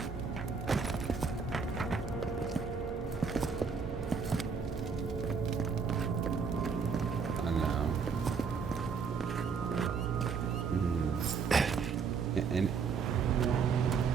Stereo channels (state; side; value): quieter; left; 5.6 dB